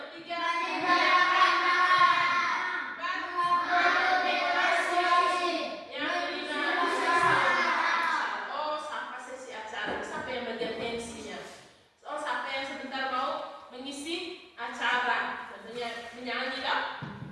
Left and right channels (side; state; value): both; identical; correlation 1.00